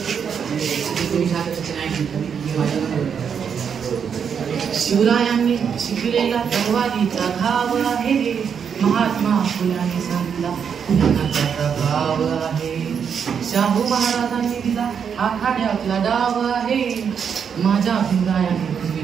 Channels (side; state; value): left; quieter; 7.2 dB